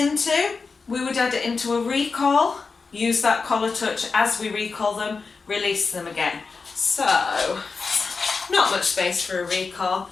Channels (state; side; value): quieter; right; 4.6 dB